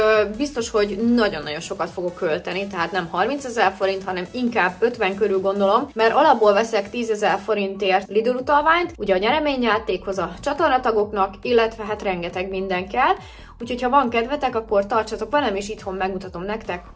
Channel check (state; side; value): identical; both; correlation 1.00